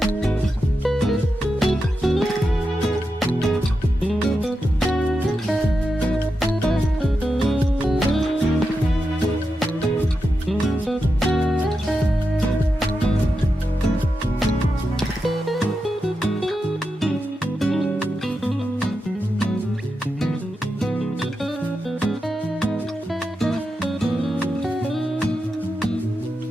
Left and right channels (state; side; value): normal; both; correlation 0.88